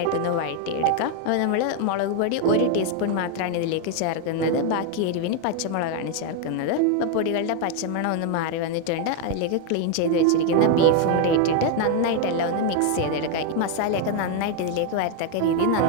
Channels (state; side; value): different; both; correlation 0.01